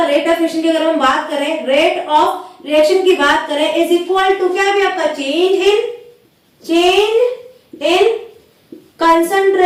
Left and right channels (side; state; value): both; identical; correlation 1.00